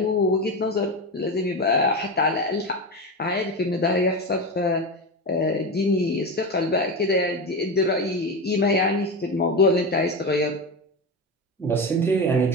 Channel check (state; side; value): normal; both; correlation 0.19